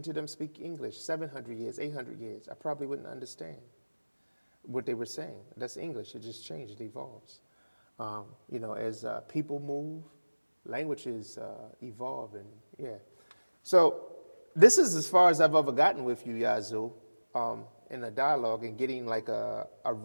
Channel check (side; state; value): both; inverted; correlation -1.00